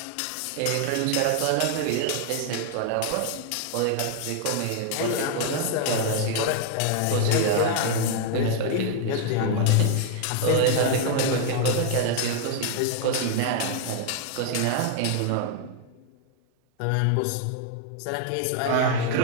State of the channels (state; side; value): different; both; correlation 0.00